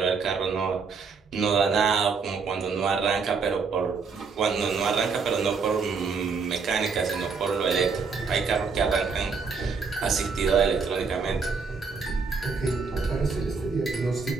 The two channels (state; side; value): quieter; left; 5.1 dB